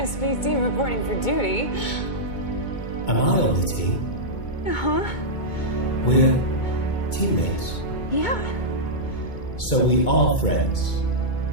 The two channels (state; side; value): late; right; 2.2 ms